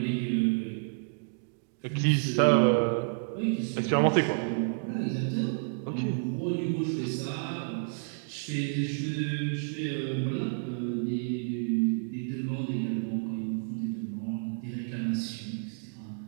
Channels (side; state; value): left; silent; digital silence